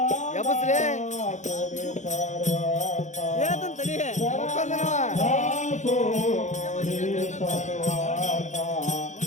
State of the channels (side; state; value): right; late; 0.35 ms